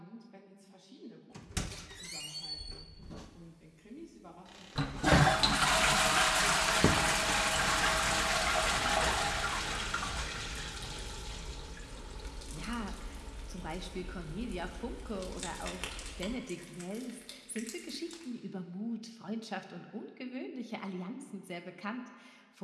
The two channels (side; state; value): both; identical; correlation 1.00